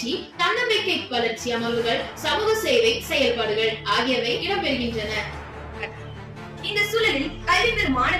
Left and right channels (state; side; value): identical; both; correlation 1.00